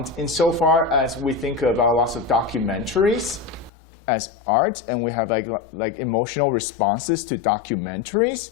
insofar as we think about lots of documentaries as art, and we have like emotional responses to documentaries,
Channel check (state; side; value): drops out; right; at 3.7 s